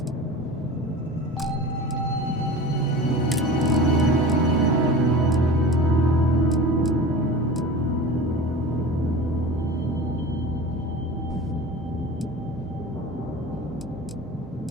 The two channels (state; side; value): normal; both; correlation 0.35